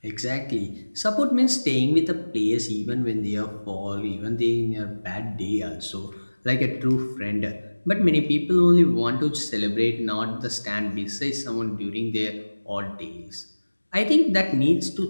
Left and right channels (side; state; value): both; inverted; correlation -1.00